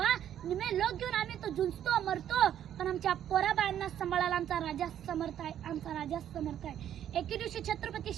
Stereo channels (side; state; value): left; quieter; 10.5 dB